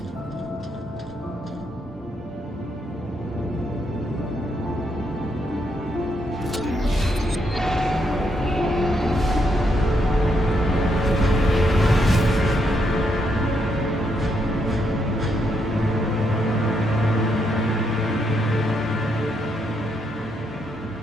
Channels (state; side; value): normal; both; correlation 0.78